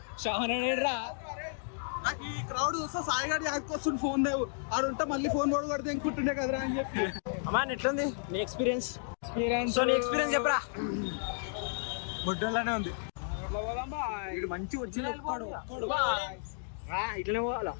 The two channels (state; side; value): silent; right; digital silence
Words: షావనరా. నాకు ఈ క్రౌడ్ చూస్తే సాయి గారి వస్తుంది ఫోన్ లేవు ఆడు ఉంటే మళ్ళీ ఫోన్ కూడా కొడితే ఇంకుంటుండే కదరా అని చెప్పి. అమ్మా ఎట్లుంది నీ ఎక్స్పీరియన్స్? సో నీ ఎక్స్పీరియన్స్ చెప్పరా. బొడ్డలానే ఉంది. ఇటు మంచి వచ్చింది ఒక్కడు ఇట్లనే పోవాలా